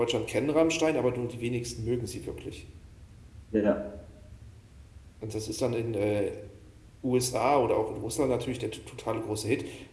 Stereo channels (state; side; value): identical; both; correlation 1.00